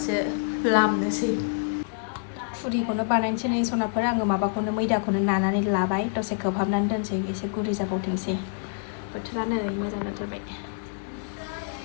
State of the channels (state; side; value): silent; right; digital silence